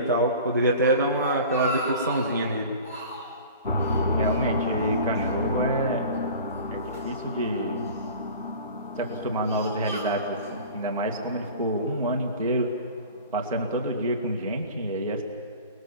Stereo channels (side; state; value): both; inverted; correlation -0.40